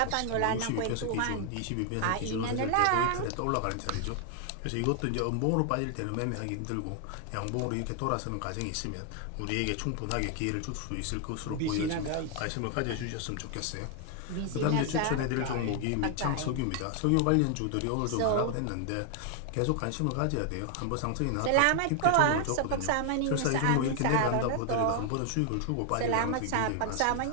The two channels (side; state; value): both; different; correlation 0.00